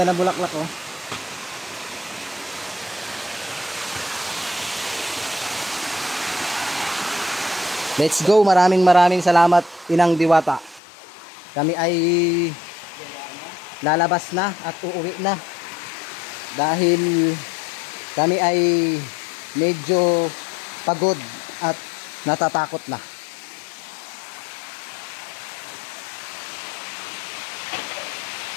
ng bulaklak oh. Let's go. Maraming salamat, Inang Diwata. Kami ay lalabas na at uuwi na. Dahil kami ay medyo pagod at natatakot na.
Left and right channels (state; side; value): drops out; right; at 10.8 s